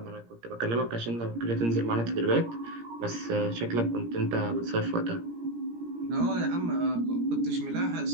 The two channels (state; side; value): late; left; 17 ms